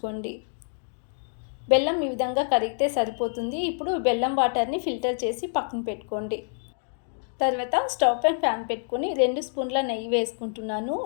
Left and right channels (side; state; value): right; silent; digital silence